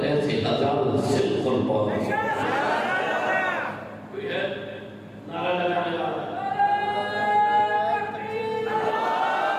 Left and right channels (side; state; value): both; identical; correlation 1.00